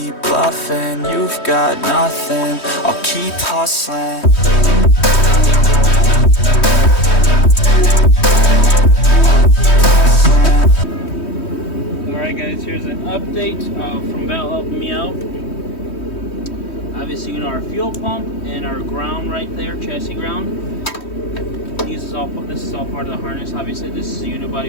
bluffing. You've got nothing, I'll keep hustling. Alright guys, here's an update from Val helping me out. Obviously, you know, our fuel pump and our ground right there, chassis ground. This is all part of the harness. Obviously, this is the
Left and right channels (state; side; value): late; right; 3.1 ms